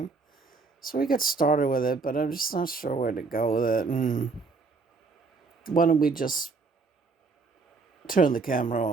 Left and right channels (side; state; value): left; quieter; 4.3 dB